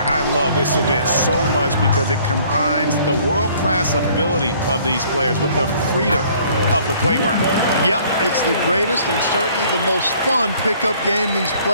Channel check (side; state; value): both; inverted; correlation -0.58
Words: I love this event so much because it combines the world-class ability of these players with the freedom of the playground. Yep, it's the greatest and certainly the most fun pickup game these